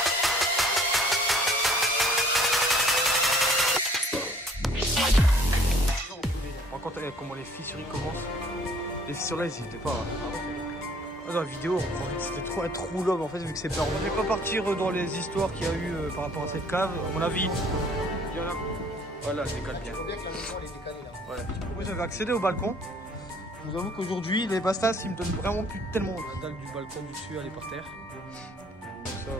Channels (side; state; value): both; normal; correlation 0.57